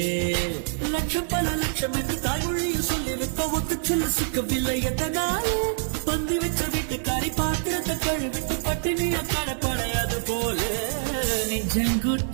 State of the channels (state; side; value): silent; left; digital silence